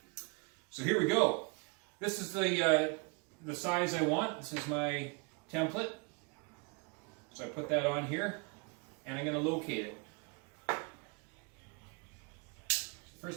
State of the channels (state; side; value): quieter; left; 31.4 dB